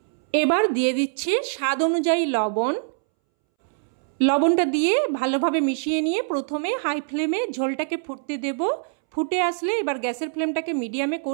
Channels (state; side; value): silent; left; 63 dB below the other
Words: এবার দিয়ে দিচ্ছি স্বাদ অনুযায়ী লবণ। লবণটা দিয়ে ভালোভাবে মিশিয়ে নিয়ে প্রথমে হাই ফ্লেমে ঝোলটাকে ফুটতে দেব। ফুটে আসলে এবার গ্যাসের ফ্লেমটাকে মিডিয়ামে